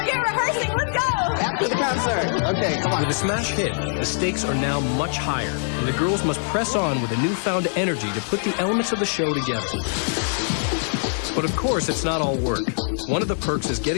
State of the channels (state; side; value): silent; right; digital silence